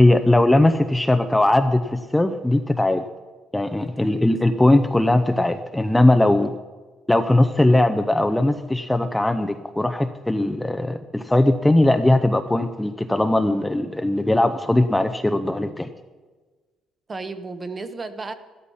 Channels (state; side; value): normal; both; correlation 0.97